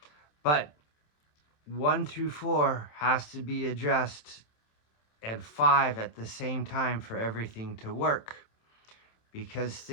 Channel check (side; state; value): right; late; 27 ms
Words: But 1 through 4 has to be addressed, and 5 at the same time for everything to work. Because